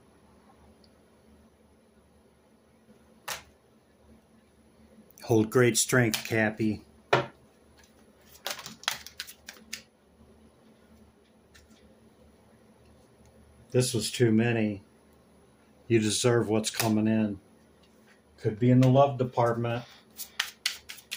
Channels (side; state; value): both; identical; correlation 1.00